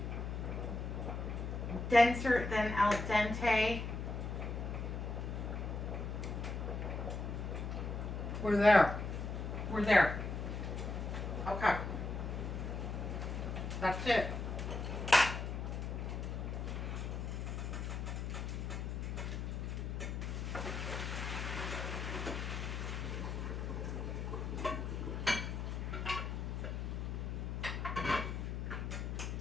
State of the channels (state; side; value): noise; left; hum, 3 dB below the sound